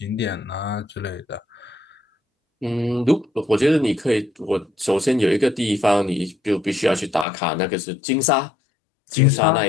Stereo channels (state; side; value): drops out; right; at 7.2 s